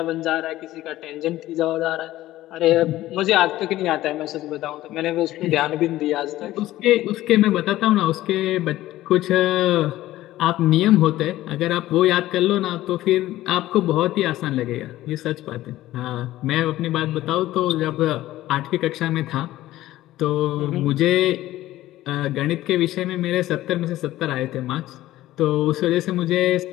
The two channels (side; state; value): right; quieter; 15.4 dB